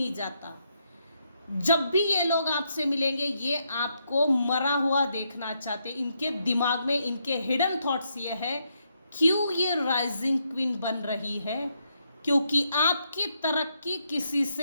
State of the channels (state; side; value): inverted; both; correlation -0.78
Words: जाता? जब भी ये लोग आपसे मिलेंगे, ये आपको मरा हुआ देखना चाहते। इनके दिमाग में, इनके हिडन थॉट्स ये है, क्यों ये राइजिंग क्वीन बन रही है? क्योंकि आपकी तरक्की किसी